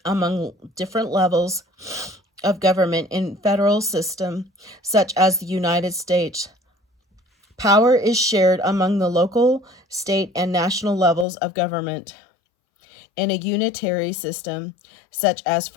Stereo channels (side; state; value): right; drops out; at 11.2 s